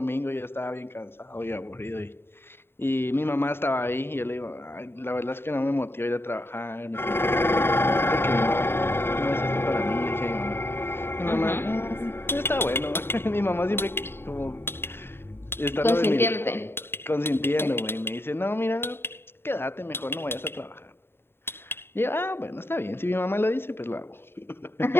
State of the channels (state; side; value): late; right; 0.11 ms